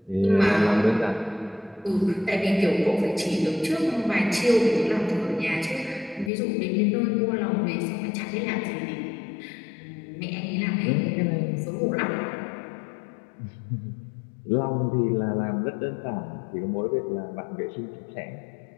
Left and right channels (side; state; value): right; drops out; at 6.3 s